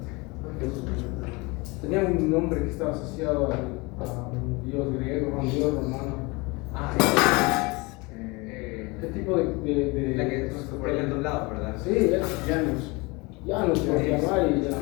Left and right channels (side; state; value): right; quieter; 25.9 dB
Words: Tenía un nombre que estaba asociado a un dios griego, a un dios romano. ¿Qué tipo de. La que por el doblado, ¿verdad? Sí, Janus. Janus, por llamar y